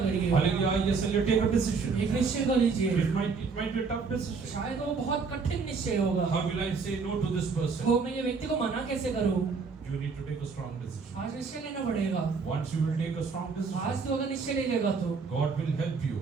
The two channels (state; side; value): quieter; left; 4.9 dB